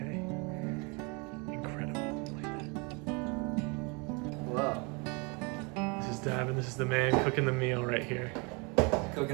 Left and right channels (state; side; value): quieter; left; 30.7 dB